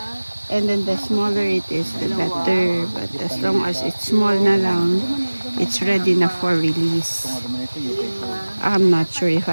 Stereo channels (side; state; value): both; inverted; correlation -1.00